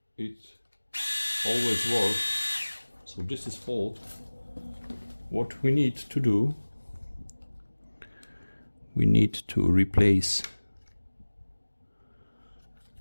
It always works, so this is fault. What we need to do, we need to replace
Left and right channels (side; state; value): both; inverted; correlation -1.00